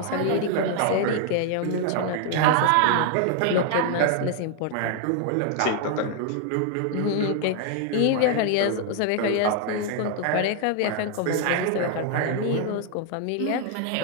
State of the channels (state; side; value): different; both; correlation 0.00